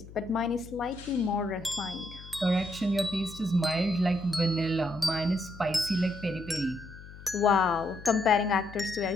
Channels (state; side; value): noise; left; hum, 17 dB below the sound